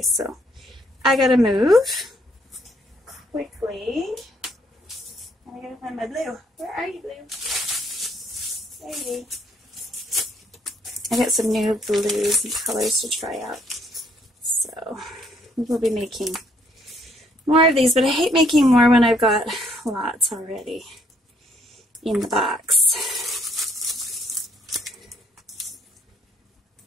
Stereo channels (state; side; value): normal; both; correlation 0.68